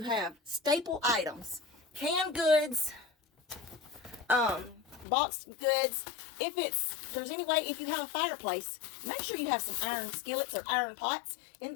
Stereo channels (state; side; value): drops out; right; at 5.1 s